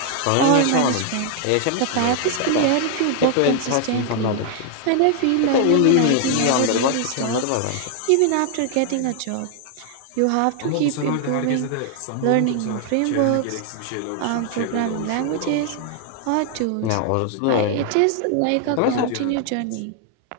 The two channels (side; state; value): both; different; correlation 0.00